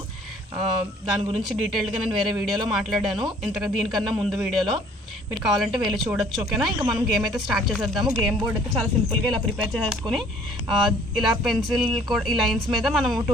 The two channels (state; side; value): normal; both; correlation 0.57